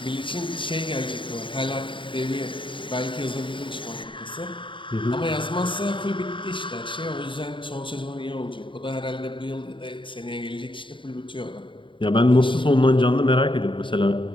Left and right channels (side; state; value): right; late; 0.24 ms